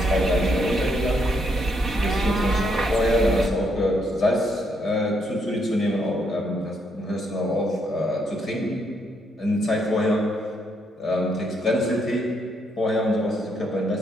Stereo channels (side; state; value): both; normal; correlation 0.75